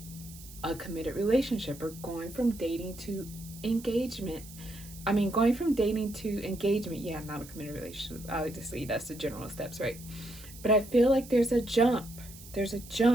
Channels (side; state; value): right; noise; hiss, 18 dB below the sound